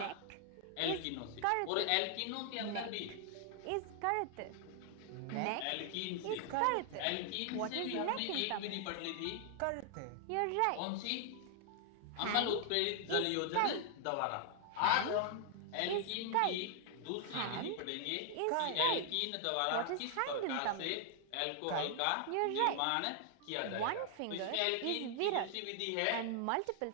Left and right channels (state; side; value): different; both; correlation 0.00